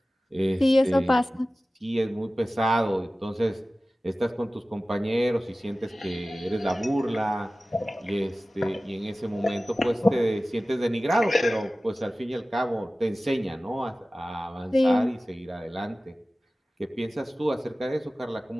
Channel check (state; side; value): normal; both; correlation 0.97